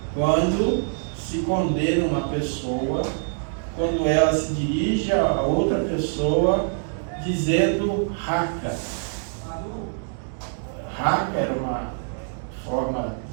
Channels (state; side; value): silent; left; digital silence